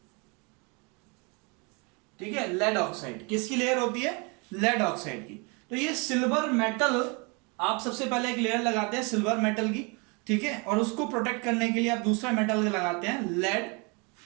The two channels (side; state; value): left; quieter; 31.3 dB